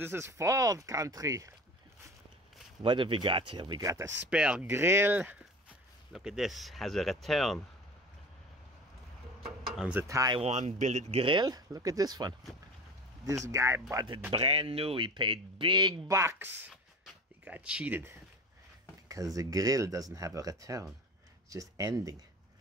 is Ford country. What have we got here? We got a spare grill. Look at this, has a return on the Taiwan billet grill. Look at this one. This guy bought it brand new. He paid big bucks. He got cheated because the grill doesn't have a return. It's just ending.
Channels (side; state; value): both; normal; correlation 0.34